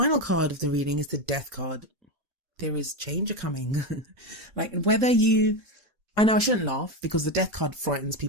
card of the reading is the Death card. There is change coming. Like, I know I shouldn't laugh because the Death card frightens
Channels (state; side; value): late; left; 4.4 ms